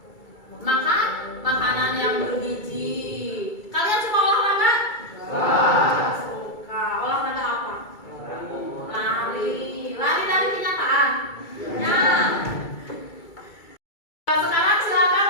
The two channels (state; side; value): late; right; 2.3 ms